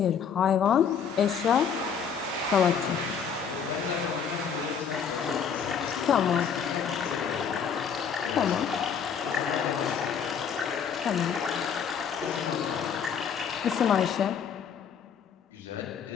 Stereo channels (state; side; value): quieter; right; 7.0 dB